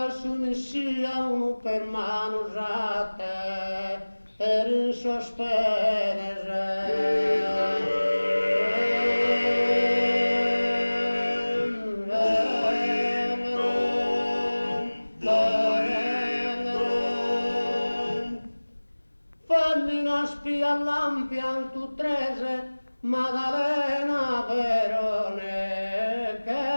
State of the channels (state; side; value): inverted; both; correlation -1.00